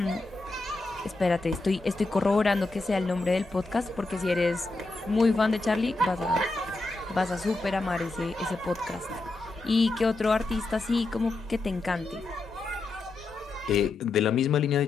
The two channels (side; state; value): right; quieter; 3.2 dB